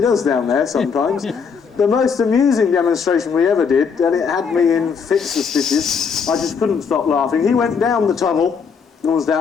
does down there sometimes. The most amusing demonstration we ever did, and it had me in fits of stitches, I just couldn't stop laughing. He went down the tunnel, and was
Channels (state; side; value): quieter; right; 6.0 dB